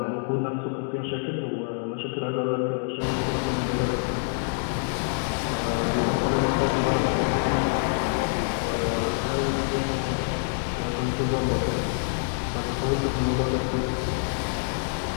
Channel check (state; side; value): silent; right; digital silence